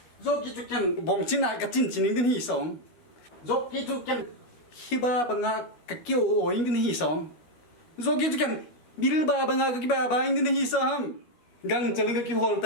Joki tu kan bong cina ka cin cining din hi song. Joki tu kan hiba banga ka kyo o ing din hi song. Joki tu kan bil ba banga ka kiba ba ing din hi sam. Gang chaling ka ki hol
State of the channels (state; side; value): late; right; 12 ms